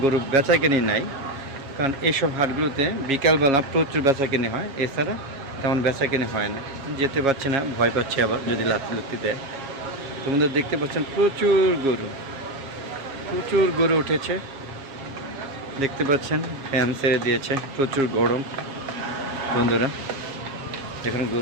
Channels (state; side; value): late; left; 7.3 ms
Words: গরু বেচা কিনি নাই, কারণ এইসব হাটগুলোতে বিকালবেলা প্রচুর বেচা কিনে হয়, এছাড়া তেমন বেচা কিনে হয় না। যেতে পারছে না, ভয় পাচ্ছে আবার যদি লাত্তি দেয়। তোমাদের দেখতে পাচ্ছেন প্রচুর গরু উঠেছে। দেখতে পাচ্ছেন ফ্যান ছেড়ে দিয়েছে, প্রচুর গরম। বন্ধুরা দেখেন